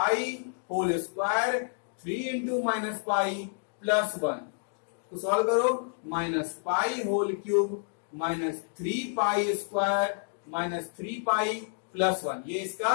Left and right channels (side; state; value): right; silent; digital silence